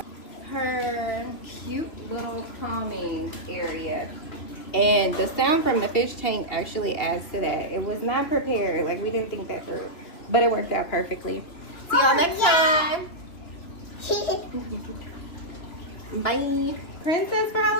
Her cute little calming area. And the sound from the fish tank actually adds to that. It was not prepared. Like, we didn't think that through. But it worked out perfectly. See y'all next time. Bye. Princess for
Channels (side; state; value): right; late; 3.0 ms